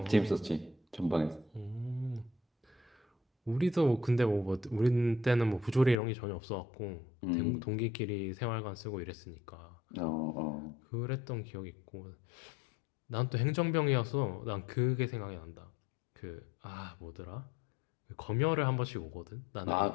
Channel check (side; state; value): right; drops out; at 6.0 s